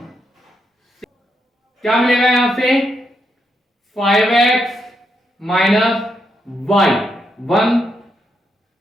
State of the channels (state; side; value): normal; both; correlation 0.81